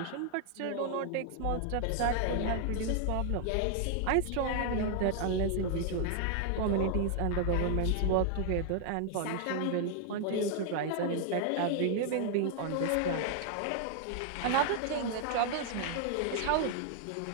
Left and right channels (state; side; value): different; both; correlation 0.00